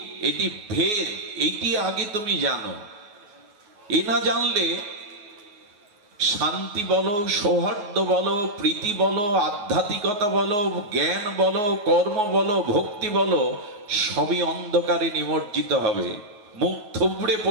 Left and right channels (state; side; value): late; left; 9.5 ms